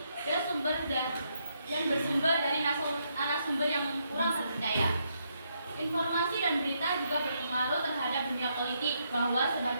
dan bersumber dari narasumber yang kurang terpercaya. Informasi dan berita juga berpengaruh terhadap dunia politik, bahwa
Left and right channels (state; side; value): inverted; both; correlation -0.77